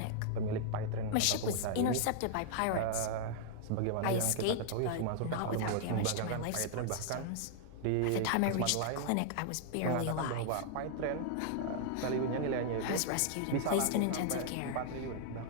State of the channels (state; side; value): different; both; correlation -0.01